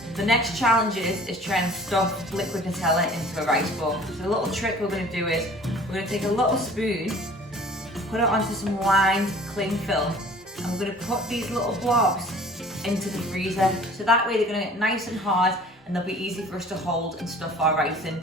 the next challenge is trying to stuff liquid Nutella into a rice ball. So the little trick we're going to do is, we're going to take a little spoon, put it onto some lined cling film, and we're going to put these little blobs into the freezer. So that way they're going to get nice and hard and they'll be easy for us to hold and stuff our rice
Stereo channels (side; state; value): both; normal; correlation 0.49